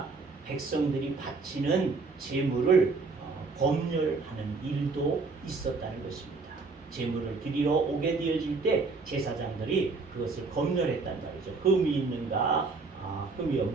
백성들이 바치는 제물을 검열하는 일도 있었다는 것입니다. 제물을 드리러 오게 되어질 때 제사장들이 그것을 검열했단 말이죠. 흠이 있는가, 흠이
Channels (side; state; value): left; quieter; 4.1 dB